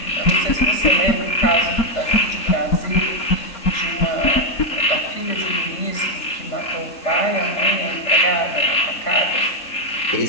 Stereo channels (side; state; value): right; late; 3.7 ms